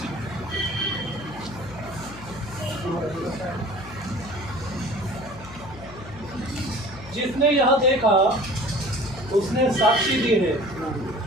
जिसने यह देखा उसने साक्षी दी है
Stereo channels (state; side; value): noise; left; hum, 17 dB below the sound